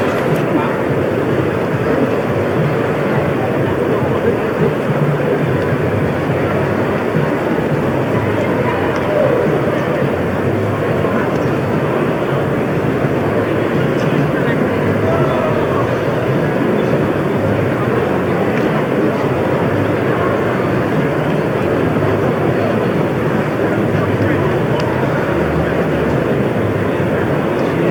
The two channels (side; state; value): both; identical; correlation 1.00